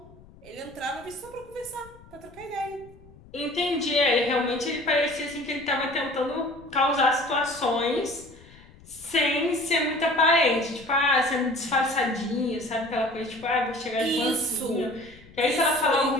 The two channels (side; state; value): left; noise; rumble, 23 dB below the sound